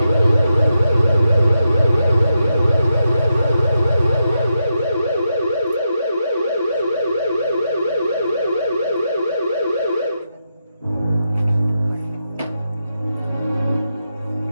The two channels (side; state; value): both; inverted; correlation -0.85